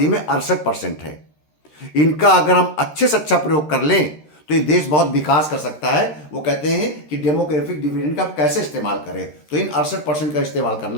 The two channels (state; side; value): late; right; 13 ms